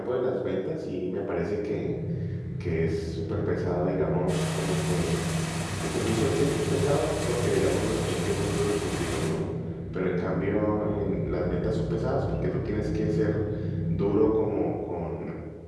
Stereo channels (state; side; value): identical; both; correlation 1.00